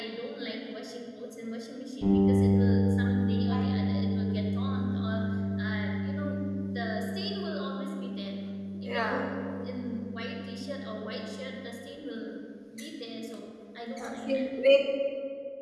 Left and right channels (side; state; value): both; identical; correlation 1.00